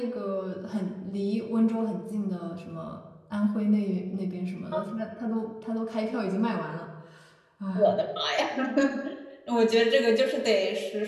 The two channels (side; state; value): both; identical; correlation 1.00